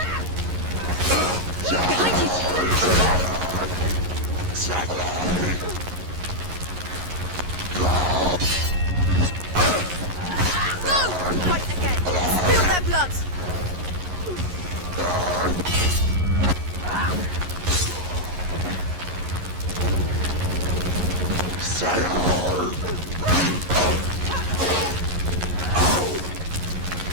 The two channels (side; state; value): left; late; 11 ms